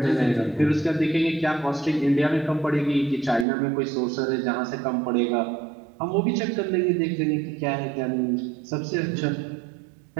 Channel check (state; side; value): drops out; left; at 3.5 s